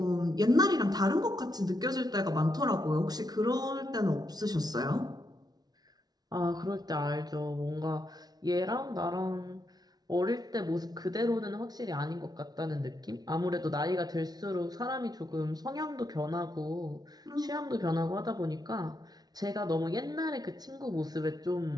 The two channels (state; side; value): late; left; 0.19 ms